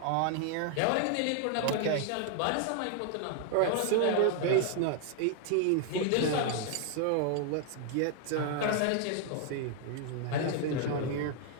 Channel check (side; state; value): both; different; correlation 0.00